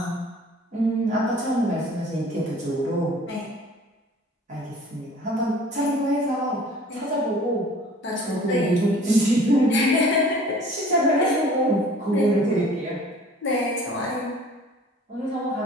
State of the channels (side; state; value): both; normal; correlation 0.49